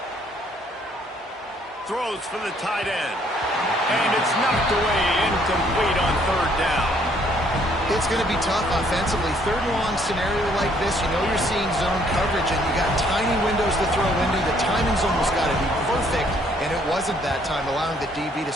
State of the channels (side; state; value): both; normal; correlation 0.65